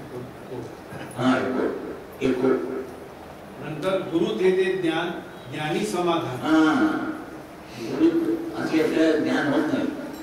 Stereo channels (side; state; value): both; identical; correlation 1.00